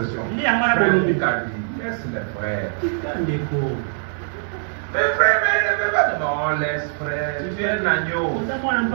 Frère Luc a dit, laisse les frères. Mais frère, mais il ne veut pas de non, laisse frère, tu es un agneau.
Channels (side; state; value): left; silent; digital silence